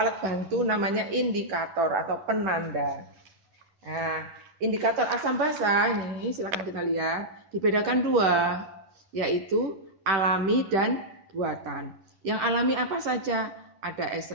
bantu namanya indikator atau penanda. Nah, indikator asam basa ini silakan kita lihat dibedakan dua, yaitu alami dan buatan. Yang alami apa saja? Ada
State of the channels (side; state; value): left; late; 10 ms